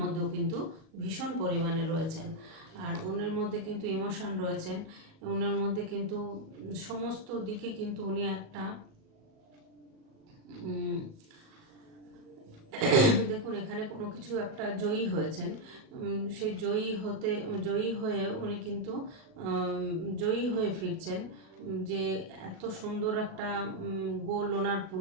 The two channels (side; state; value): left; late; 37 ms